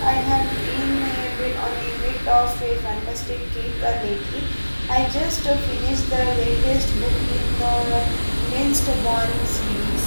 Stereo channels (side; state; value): both; inverted; correlation -1.00